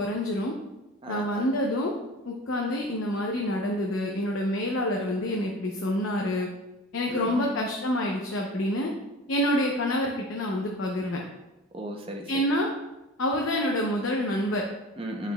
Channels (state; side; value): normal; both; correlation 0.37